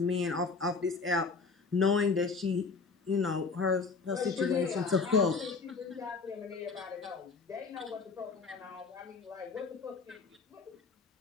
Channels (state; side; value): quieter; right; 4.6 dB